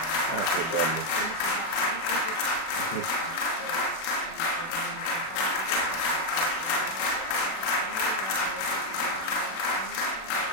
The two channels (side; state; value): right; late; 37 ms